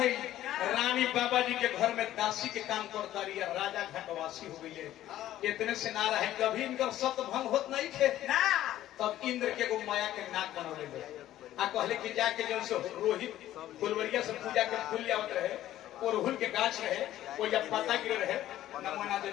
रानी बाबा जी के घर में दासी के काम करता रही, राजा घाटवासी हो गई। इतने से ना रहे, कभी इनका सत्य भंग होत नहीं थे ना। तब इंद्र के गो माया के नाक बनौले आ कहले कि जाके जो से रोहित फुलवरिया से पूजा के फूल आवत रहे, ओरहुल के गाछ रहे, वो जब पत्ता गिरे रहे नमोना दे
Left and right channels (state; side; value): quieter; right; 13.4 dB